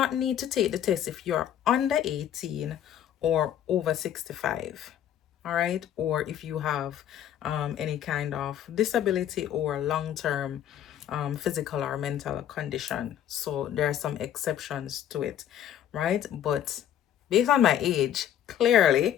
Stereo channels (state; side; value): quieter; right; 10.5 dB